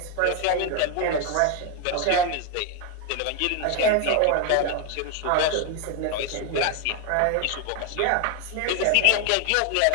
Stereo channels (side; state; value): both; different; correlation 0.01